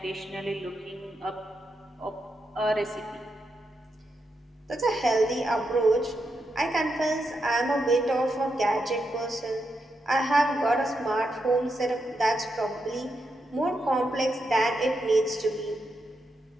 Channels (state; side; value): normal; both; correlation 0.84